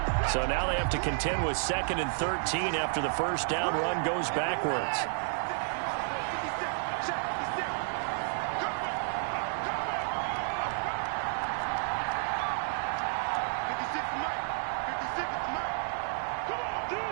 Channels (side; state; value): left; silent; 57 dB below the other